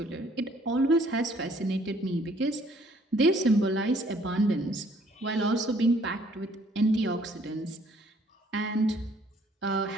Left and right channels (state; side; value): normal; both; correlation 0.61